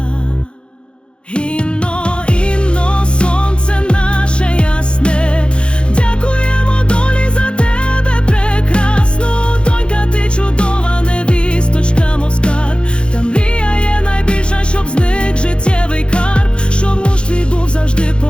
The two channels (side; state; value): right; late; 0.056 ms